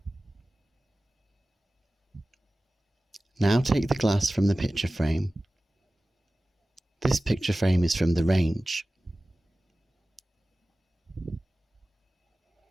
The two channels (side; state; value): both; normal; correlation 0.97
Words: Now take the glass from the picture frame. This picture frame is from the range.